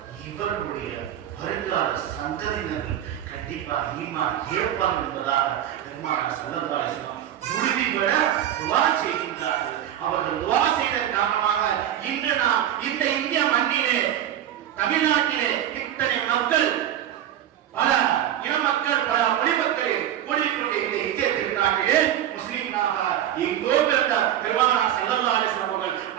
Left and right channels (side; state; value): left; quieter; 11.2 dB